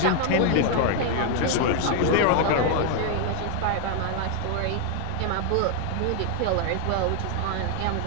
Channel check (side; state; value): both; different; correlation 0.01